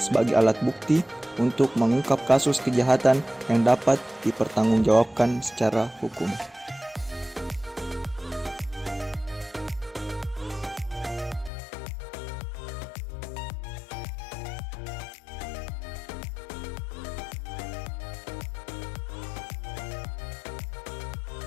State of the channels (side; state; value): right; drops out; at 11.5 s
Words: alat bukti untuk mengungkap kasus kejahatan yang dapat dipertanggungjawabkan secara hukum.